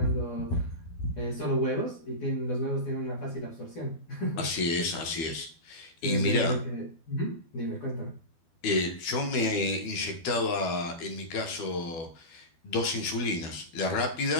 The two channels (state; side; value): late; right; 12 ms